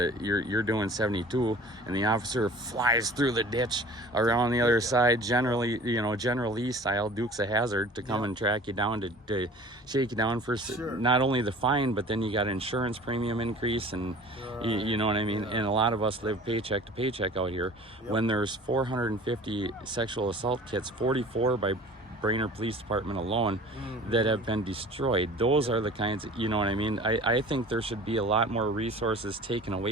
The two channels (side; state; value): both; normal; correlation 0.44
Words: you're doing 72 and the officer flies through the ditch around the other side, generally, you know, General Lee style, Dukes of Hazzard, to come and track you down, to shake you down for not only the fine, but then you got insurance premium increase and you know what I mean? And a lot of us live paycheck to paycheck out here. When there's 450 sexual assault kits, 44 by Brainerd Police Department alone that have been destroyed. Those are the kinds of, you know what I mean? I think there should be a lot more resources taken